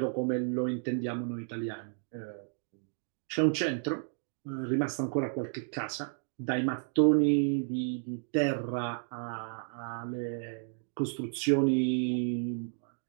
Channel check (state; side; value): silent; left; 56 dB below the other